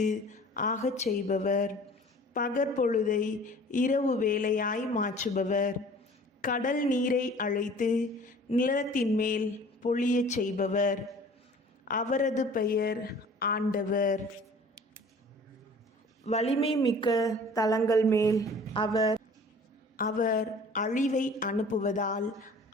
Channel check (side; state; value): both; normal; correlation 0.47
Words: ஆகச் செய்பவர், பகற்பொழுதை இரவு வேளையாய் மாற்றுபவர், கடல் நீரை அழைத்து நிலத்தின் மேல் பொழியச் செய்பவர். அவரது பெயர் ஆண்டவர். வலிமை மிக்க தலங்கள் மேல் அவர் அழிவை அனுப்புவதால்